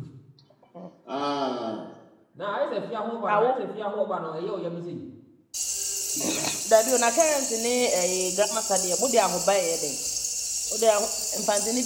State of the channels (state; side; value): identical; both; correlation 1.00